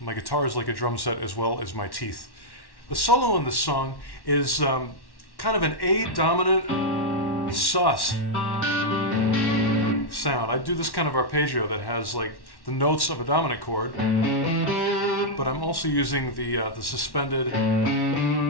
guitar is like a drum set as well as my teeth. The solo in this song is kind of an A dominant sus sound. I do this kind of arpeggio that has like the notes of a dominant chord, but I'm also using the suspended,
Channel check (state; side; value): late; right; 1.1 ms